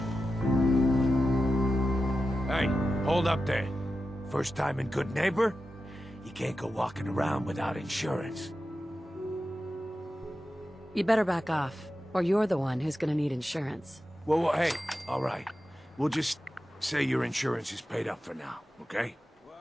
Hey, hold up there. First time in Good Neighbor? You can't go walking around without insurance. You better back off, or you're the one who's gonna need insurance. Well, hey, all right. We'll just say your insurance is paid up for now, okay?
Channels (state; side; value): normal; both; correlation 0.91